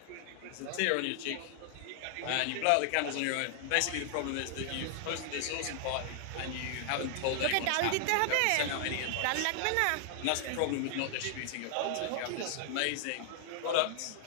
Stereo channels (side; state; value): both; different; correlation 0.00